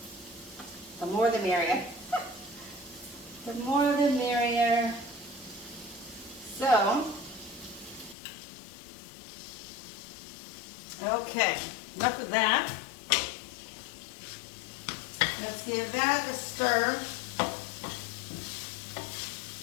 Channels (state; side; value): drops out; right; at 8.2 s